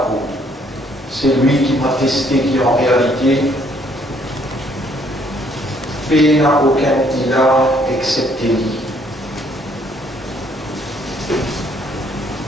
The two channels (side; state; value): both; normal; correlation 0.65